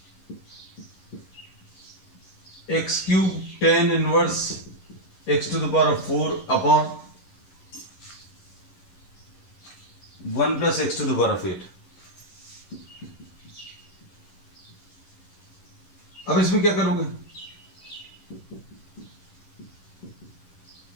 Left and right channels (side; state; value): right; late; 11 ms